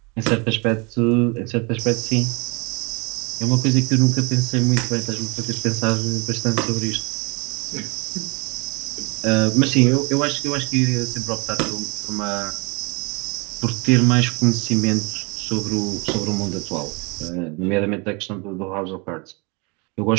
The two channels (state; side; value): quieter; left; 30.0 dB